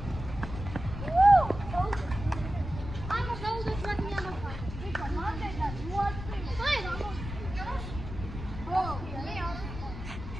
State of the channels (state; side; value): noise; left; rumble, 9 dB below the sound